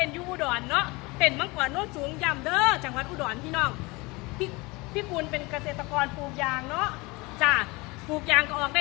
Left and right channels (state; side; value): quieter; right; 24.5 dB